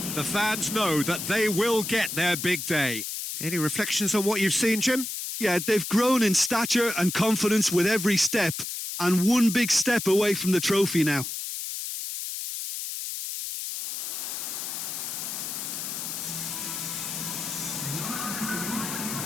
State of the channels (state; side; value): noise; left; hiss, 5 dB below the sound